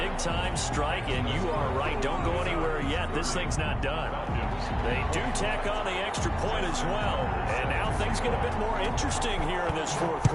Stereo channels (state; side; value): identical; both; correlation 1.00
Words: strike, and you are right. Don't go anywhere yet. This thing's not done. They do tack on the extra point as well. And now things get a bit more interesting here in this 4th